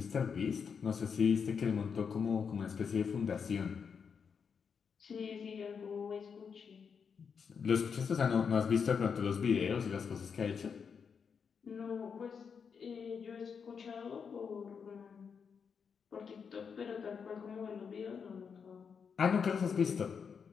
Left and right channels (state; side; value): quieter; right; 6.3 dB